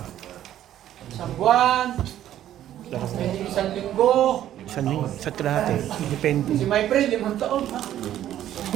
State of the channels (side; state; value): left; quieter; 11.9 dB